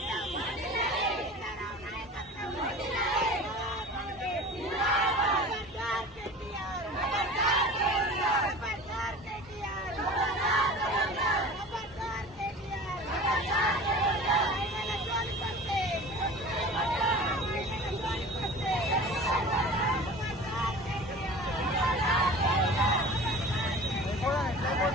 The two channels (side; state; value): both; normal; correlation 0.39